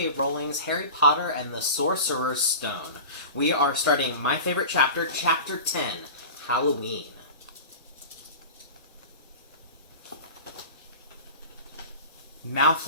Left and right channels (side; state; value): both; inverted; correlation -0.33